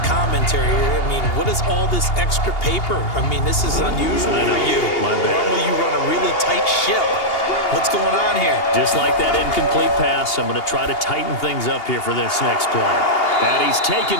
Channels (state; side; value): late; right; 2.8 ms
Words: commentary here. I mean, what is all this extra paper? I mean, this is unusual for you. My bad. Normally you run a really tight ship. What's going on here? Just like that incomplete pass, I'm going to try to tighten things up here for this next play. And he's taken